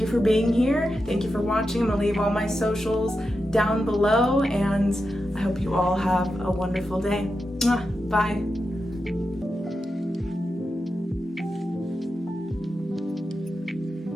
for being here, thank you for watching. I'm gonna leave all my socials down below, and I hope you all have a wonderful day. Mwah. Bye.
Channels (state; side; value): normal; both; correlation 0.89